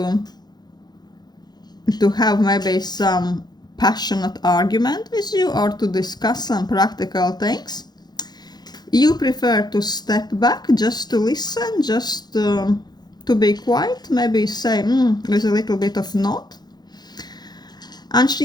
have maybe some passionate argument with you or to discuss some practical things. You prefer to step back just to listen, just to be quiet, maybe say with a little bit of nod. And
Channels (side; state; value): right; late; 0.20 ms